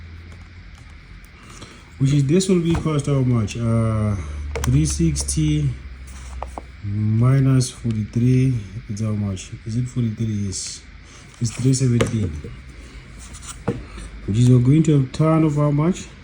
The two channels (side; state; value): both; identical; correlation 1.00